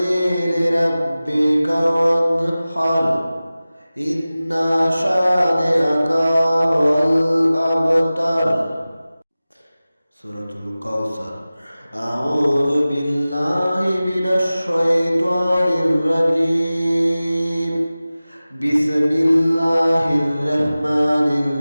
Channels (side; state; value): both; inverted; correlation -0.97